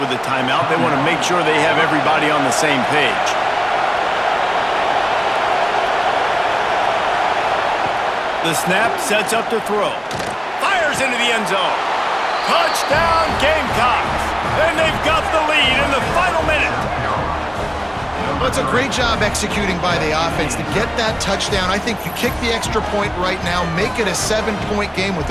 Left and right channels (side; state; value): both; identical; correlation 1.00